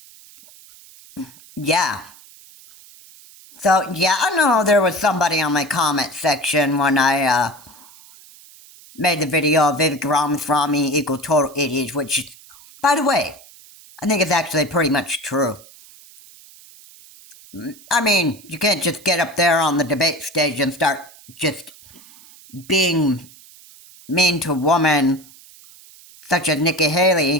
yeah. I know there was somebody on my comment section when I made the video of Vivek Ramaswamy equal total idiots, which, by the way, I think it's actually pretty much true. I mean, you can't just get up there on the debate stage and start just being mean to a woman such as Nikki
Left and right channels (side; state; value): right; noise; hiss, 23 dB below the sound